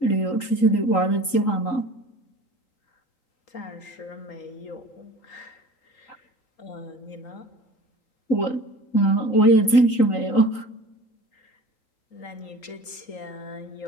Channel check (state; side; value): late; right; 3.8 ms